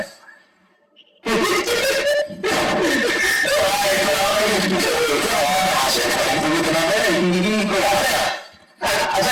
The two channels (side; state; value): both; identical; correlation 1.00